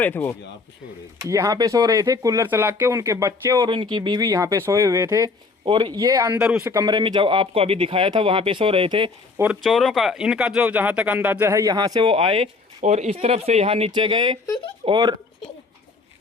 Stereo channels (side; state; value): right; quieter; 4.1 dB